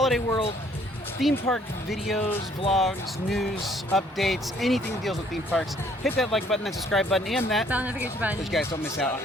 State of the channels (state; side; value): normal; both; correlation 0.62